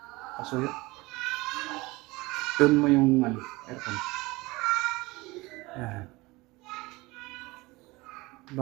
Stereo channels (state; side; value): quieter; left; 22.3 dB